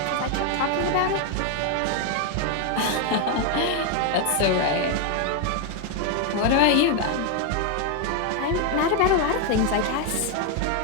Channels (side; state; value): both; different; correlation 0.01